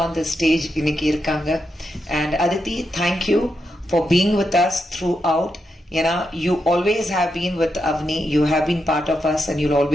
on the stage இன்னைக்கு இருக்காங்க. And Aditi, thank you for being with us throughout. ஏன்னா you always have been with Avni, you have been part of us and you'll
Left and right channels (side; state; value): both; normal; correlation 0.85